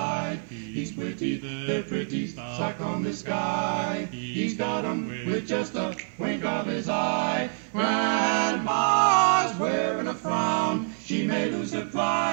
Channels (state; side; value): silent; left; 60 dB below the other